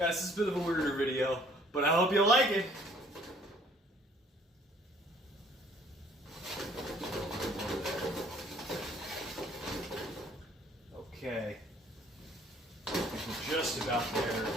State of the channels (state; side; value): normal; both; correlation 0.58